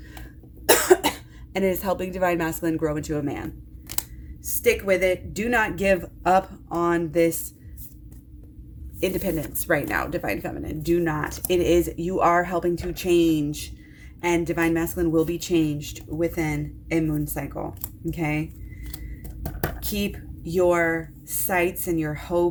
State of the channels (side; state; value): both; identical; correlation 1.00